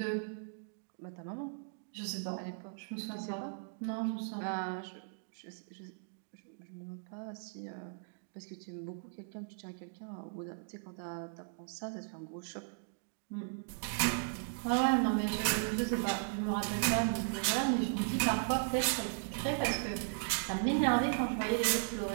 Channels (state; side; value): silent; left; digital silence